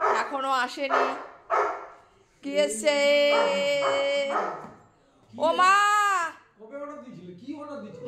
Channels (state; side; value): identical; both; correlation 1.00